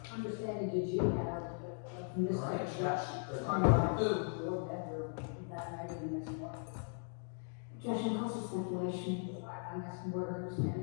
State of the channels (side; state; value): right; silent; 52 dB below the other